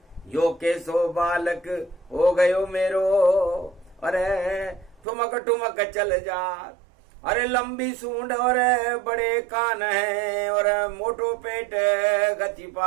यो केसो बालक हो गयो मेरो, अरे ठुमक ठुमक चल जा। अरे लंबी सूंड और बड़े कान है, और मोटो पेट गति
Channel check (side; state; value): left; drops out; at 5.0 s